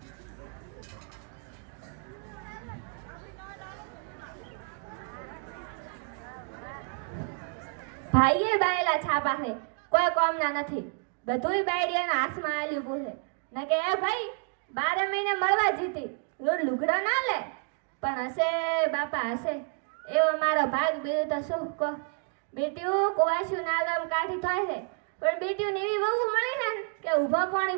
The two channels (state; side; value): quieter; left; 39.1 dB